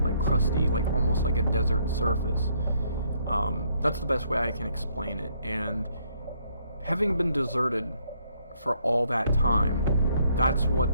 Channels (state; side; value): inverted; both; correlation -0.69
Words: crusty, like almost like a desert surface. That's the best way I can explain it. And having been deserted for all that time, that's